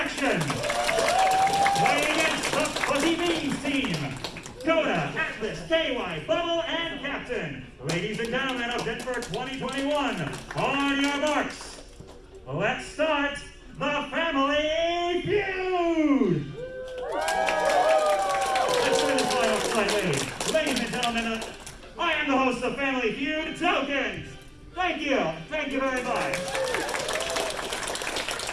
Playing against the Fuzzy Beans team. Coda, Atlas, KY, Bubble, and Captain. Ladies and gentlemen of DenFur 2021, on your marks. Let's start the Family Feud! Let's turn this line up slightly. Ladies and gentlemen, I am the host of Family Feud, Tokens! Thank you! Thank you very much!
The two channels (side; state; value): both; identical; correlation 1.00